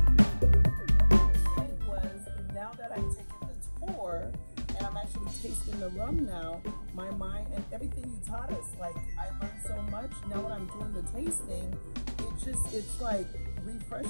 was, now that I've taken the tour and I'm actually tasting the rum now, my mind and everything you taught us, like I learned so much. Now when I'm doing the tasting, it's like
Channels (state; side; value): inverted; both; correlation -1.00